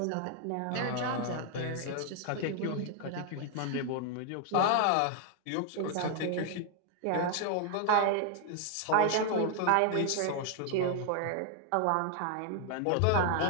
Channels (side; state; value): both; different; correlation 0.00